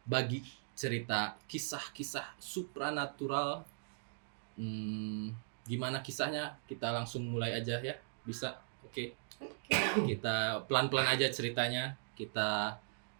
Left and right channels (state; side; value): silent; left; digital silence